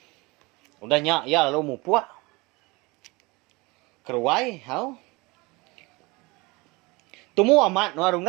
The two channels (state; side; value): quieter; left; 24.8 dB